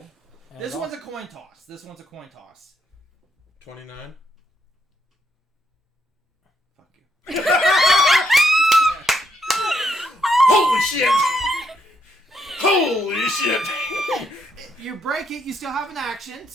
and This it one's a also- coin toss. This one's a coin toss. 29. Fuck you. Holy shit! Holy shit! You break it, you still have an action,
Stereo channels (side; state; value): both; normal; correlation 0.76